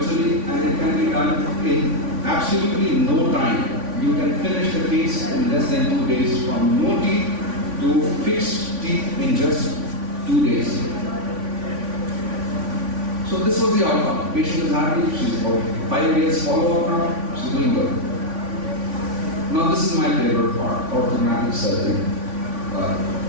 and it can be done in absolutely no time. You can finish the case in less than 2 days, from no teeth to fixed teeth in just 2 days. So this was the outcome. Patient is happy. She's about 5 years follow-up now. She's doing good. Now this is my favorite part, orthodontic surgery.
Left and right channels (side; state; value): left; late; 3.5 ms